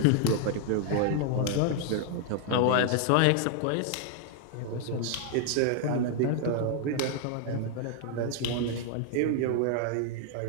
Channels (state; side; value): different; both; correlation 0.00